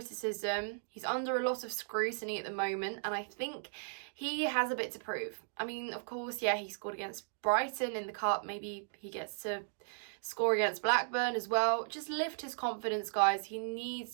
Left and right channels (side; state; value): left; silent; digital silence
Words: He's under a lot of scrutiny at the moment, and I think he has a bit to prove. I mean, of course, yeah, he scored against Brighton in the Cup. Maybe he gets to score against Blackburn as well. Just lift his confidence, guys. He